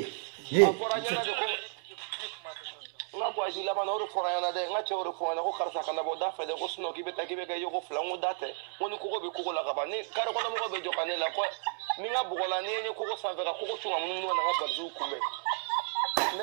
nga bo ajila ma no ro fora yana de nga che ro fora ko karsa kana bo da fe de ko sno ki beta ki be ga yo ko flango date woni ko be ko la ga ba ni kar ko na mo be jokane la ko ni nga bugola ni ni ko sa vera ko chunga mun na nga balzu kumbe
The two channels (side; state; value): left; silent; digital silence